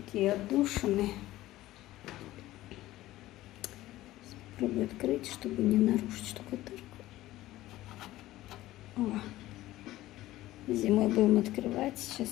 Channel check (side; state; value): right; quieter; 16.0 dB